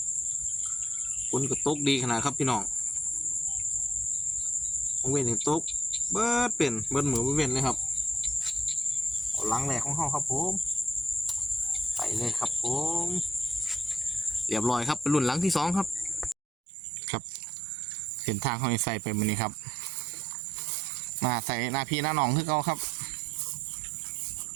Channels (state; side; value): drops out; left; at 16.4 s